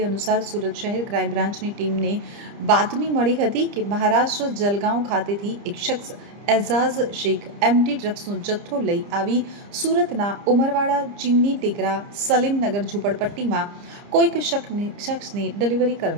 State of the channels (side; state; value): left; late; 30 ms